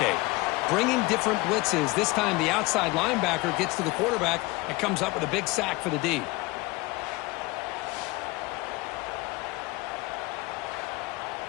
Bringing different blitzes. This time the outside linebacker gets to the quarterback and comes up with a big sack for the D.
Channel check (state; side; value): quieter; right; 22.6 dB